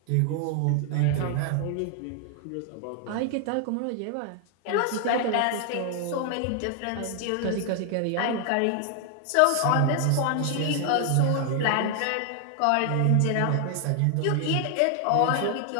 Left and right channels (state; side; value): different; both; correlation 0.00